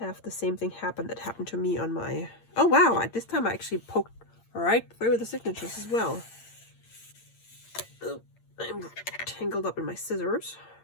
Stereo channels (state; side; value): late; right; 8.7 ms